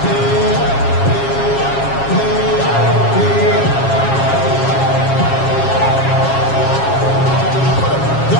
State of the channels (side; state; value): right; late; 7.4 ms